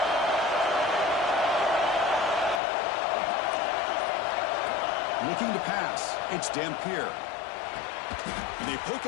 Looking to pass. It's Dampier. And they pick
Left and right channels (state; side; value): drops out; right; at 2.6 s